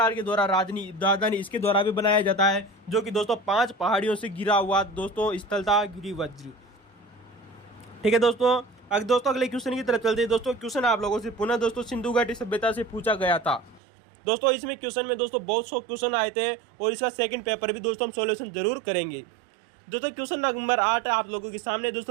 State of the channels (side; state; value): left; drops out; at 13.8 s